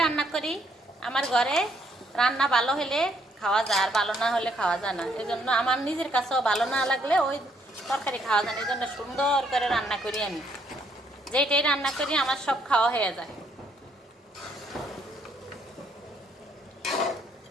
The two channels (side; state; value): both; normal; correlation 0.70